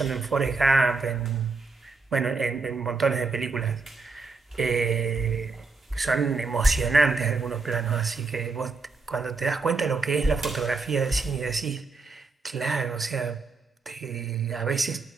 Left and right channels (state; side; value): quieter; left; 4.1 dB